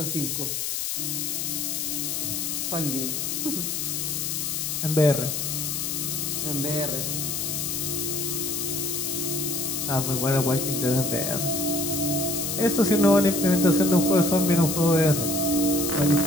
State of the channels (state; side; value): noise; left; hiss, 1 dB below the sound